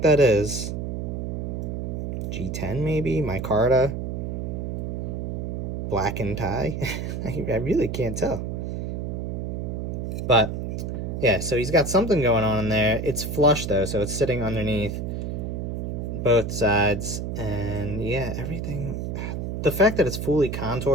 that is? G10 maybe? Micarta? Black and tie? I really can't tell. But yeah, so he's got something going on in there. It's flush though, so it's sitting underneath both sides. And yeah, everything. The fact that it's fully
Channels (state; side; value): noise; right; hum, 3 dB below the sound